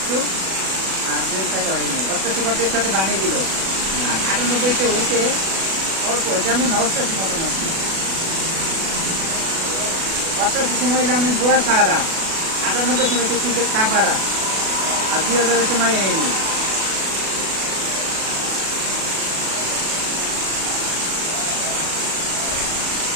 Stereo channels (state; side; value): late; left; 37 ms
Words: আর 2004 হয়নি। 88 সাথে বানিয়ে দিল, আর 98-তে হয়েছে অল্প, যেমন 88 মতন আসছে। 88 সময় যেমন গোয়া সাহারা, 98 সময় হচ্ছে ক্রিকেট কাপাড়া, আর 2000-এর সময় হয়নি।